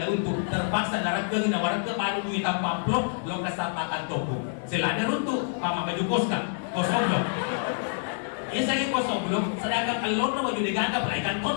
untuk terpaksa darah ke na warga ke baru duit tanpa pelok, lo kesapa kantorku, selada runtuh, pama baju kosong dong. Ia saya kosong belum, sedangkan alon baju diganti pelaikan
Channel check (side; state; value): right; silent; digital silence